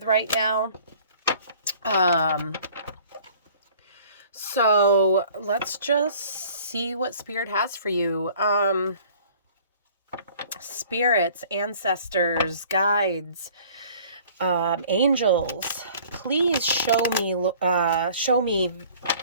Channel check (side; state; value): both; inverted; correlation -0.52